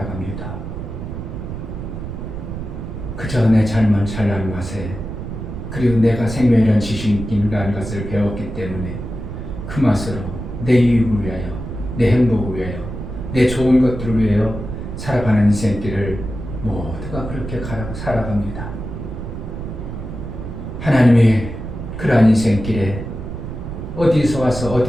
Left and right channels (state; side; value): noise; right; rumble, 7 dB below the sound